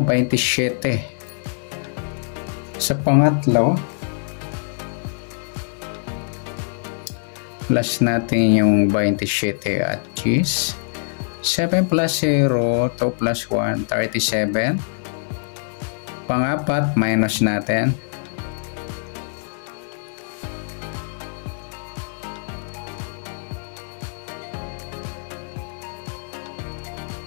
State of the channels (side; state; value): right; silent; digital silence